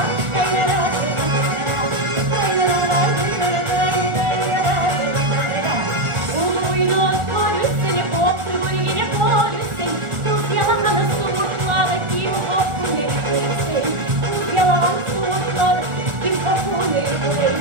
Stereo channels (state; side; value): late; left; 1.4 ms